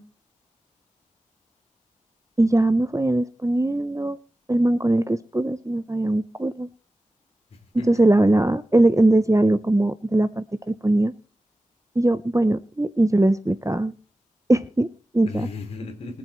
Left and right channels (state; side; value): normal; both; correlation 0.95